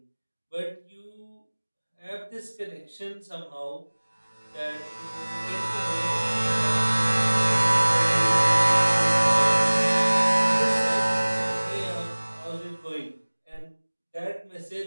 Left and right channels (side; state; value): both; inverted; correlation -1.00